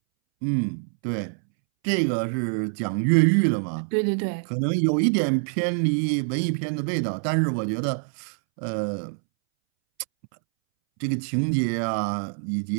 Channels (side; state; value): left; silent; 62 dB below the other